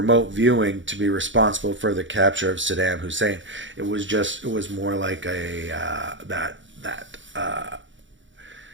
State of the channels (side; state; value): left; late; 0.55 ms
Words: viewing to be responsible for the capture of Saddam Hussein. It was more like a that